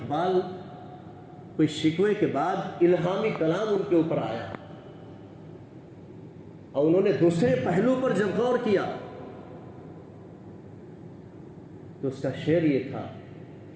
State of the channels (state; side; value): identical; both; correlation 1.00